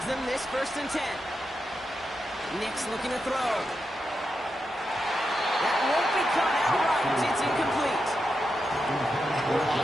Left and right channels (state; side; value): normal; both; correlation 0.87